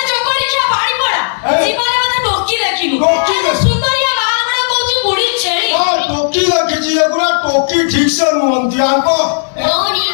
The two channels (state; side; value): silent; right; digital silence